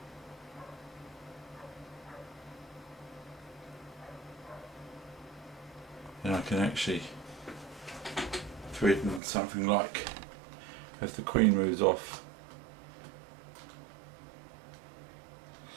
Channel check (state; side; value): drops out; left; at 9.2 s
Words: and I can actually threaten something like, if the queen moves off,